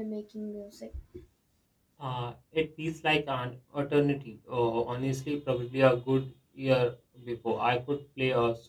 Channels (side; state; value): both; identical; correlation 1.00